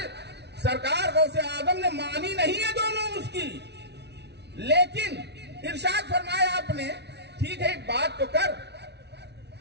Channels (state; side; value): late; left; 0.50 ms